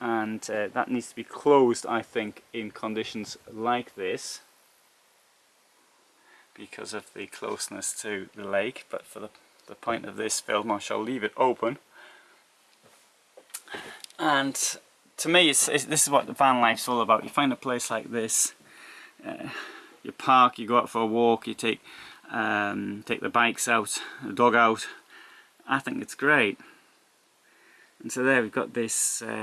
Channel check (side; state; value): both; identical; correlation 1.00